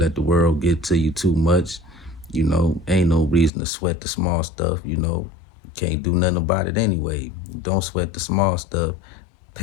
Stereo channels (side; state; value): right; drops out; at 3.5 s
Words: the world get to you too much. Ain't no reason to sweat the small stuff. Can't do nothing about it anyway. Don't sweat the small stuff.